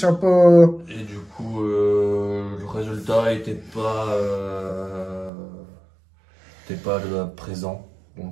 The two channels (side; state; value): left; drops out; at 5.3 s